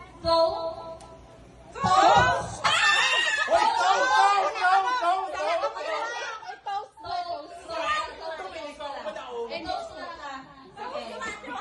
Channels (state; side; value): identical; both; correlation 1.00